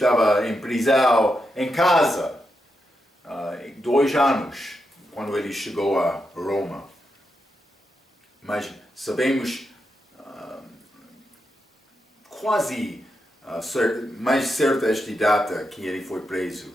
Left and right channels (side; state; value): both; normal; correlation 0.85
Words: em prisão em casa 2 anos, quando ele chegou a Roma. Mas sabemos quase mais certa esta data que ele foi preso.